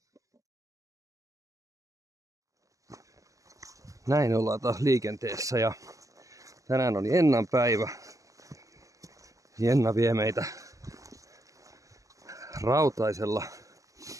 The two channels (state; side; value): late; left; 0.16 ms